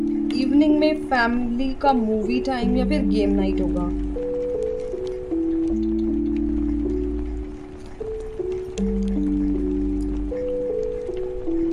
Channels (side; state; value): both; identical; correlation 1.00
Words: इवनिंग में फैमिली का मूवी टाइम या फिर गेम नाइट होगा।